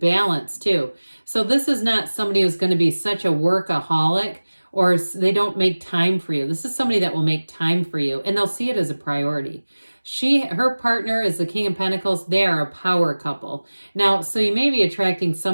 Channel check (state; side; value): inverted; both; correlation -1.00